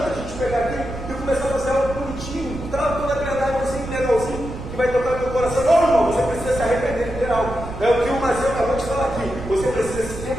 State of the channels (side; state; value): right; noise; rumble, 9 dB below the sound